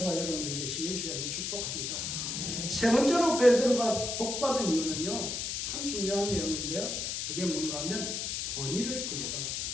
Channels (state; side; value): noise; left; hiss, 2 dB below the sound